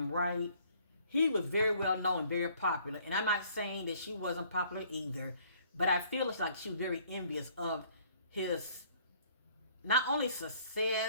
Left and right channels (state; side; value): inverted; both; correlation -0.59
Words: right, he was very well known, very popular. And I'm not saying that she wasn't popular either, but I feel it's like she was very envious of his not only